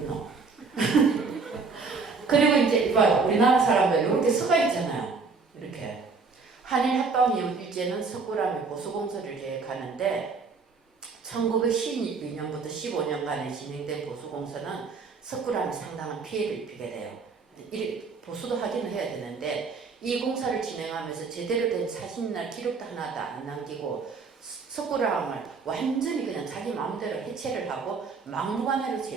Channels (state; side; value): quieter; left; 4.6 dB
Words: 그리고 이제 이봐요. 우리나라 사람들 이렇게 서가 있잖아요. 이렇게. 한일합방이후일제는 석굴암의 보수공사를 계획하는데 1912년부터 15년간에 진행된 보수공사는 석굴암에 상당한 피해를 입히게 돼요. 보수도 하기는 해야 되는데 이 공사를 진행하면서 제대로 된 사진이나 기록도 하나도 안 남기고 석굴암을 완전히 그냥 자기 마음대로 해체를 하고 막무가내로